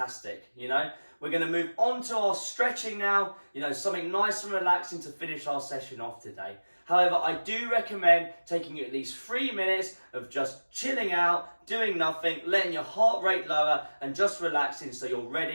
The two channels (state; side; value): inverted; both; correlation -1.00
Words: you know. We're going to move on to our stretching now, you know, something nice and relaxing to finish our session off today. However, I do recommend taking at least 3 minutes of just chilling out, doing nothing, letting your heart rate lower and just relaxing so you're